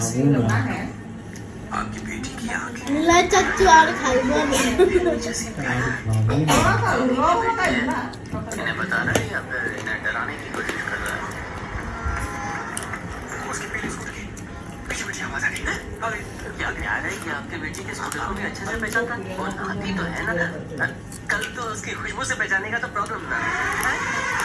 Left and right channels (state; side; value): identical; both; correlation 1.00